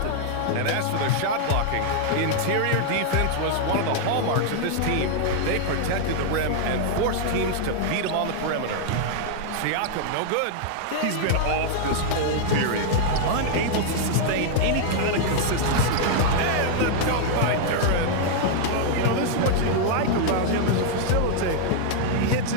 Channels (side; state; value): both; different; correlation -0.01